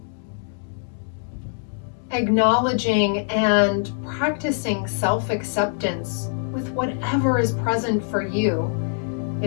Acknowledging and practicing self-acceptance with whatever is present for you.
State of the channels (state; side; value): silent; right; digital silence